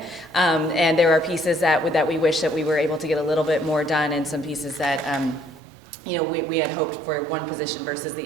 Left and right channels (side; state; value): left; drops out; at 5.6 s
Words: and there are pieces that we wish that we were able to get a little bit more done, and some pieces that we had hoped for one position versus